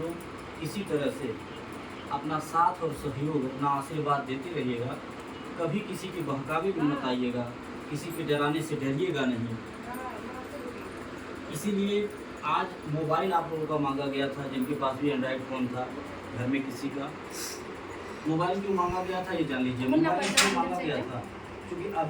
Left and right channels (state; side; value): identical; both; correlation 1.00